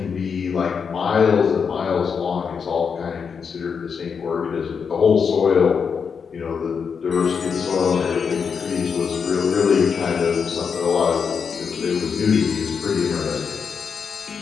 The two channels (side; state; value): right; quieter; 6.2 dB